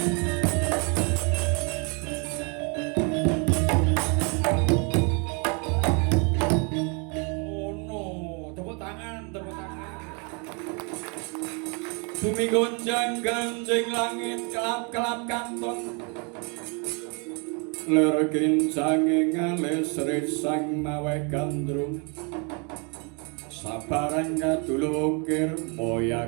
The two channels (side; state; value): left; quieter; 34.5 dB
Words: Bumi gonjang ganjing langit kelap-kelap kantong ler kincange ngales resang maweh gandrung sabarang kadulu ukir